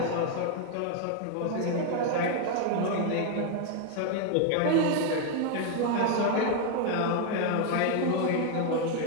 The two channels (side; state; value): both; different; correlation 0.01